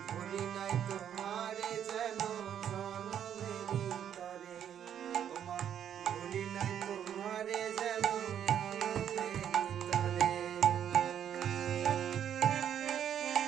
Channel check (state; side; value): quieter; left; 9.4 dB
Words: ভুলি নাই তোমারে যেন জনমেরি তরে, ওমা ভুলি নাই তোমারে যেন জনমেরি তরে।